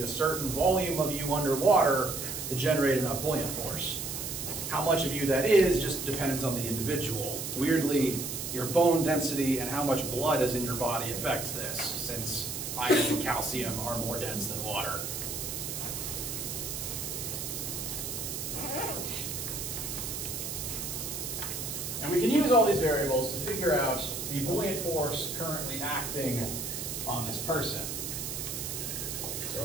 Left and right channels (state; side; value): noise; right; hiss, 5 dB below the sound